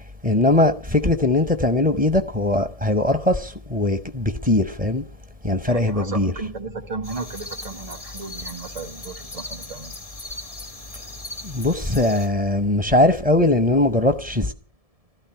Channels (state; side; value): late; left; 1.7 ms